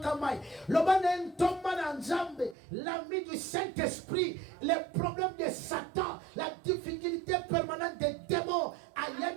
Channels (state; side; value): drops out; left; at 2.6 s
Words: mai, loba na ntomba na nzambe, l'ami du Saint-Esprit, les problèmes de Satan, la difficulté permanente des démons,